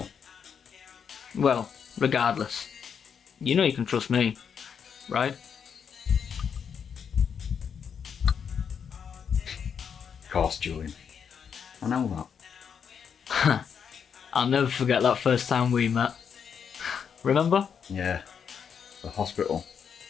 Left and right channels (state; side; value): quieter; right; 7.2 dB